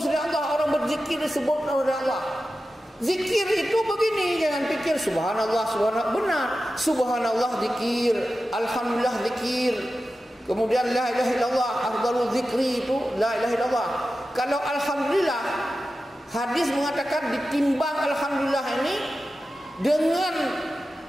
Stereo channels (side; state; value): both; normal; correlation 0.93